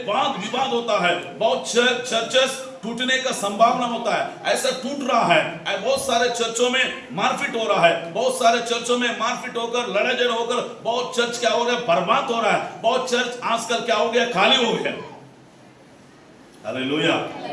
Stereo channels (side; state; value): both; identical; correlation 1.00